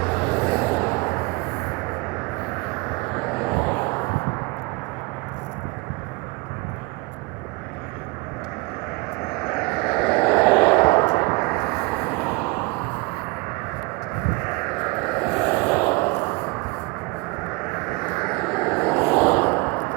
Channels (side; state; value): left; quieter; 26.4 dB